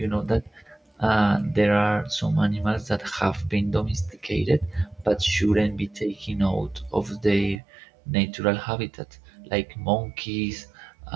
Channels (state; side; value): drops out; left; at 7.6 s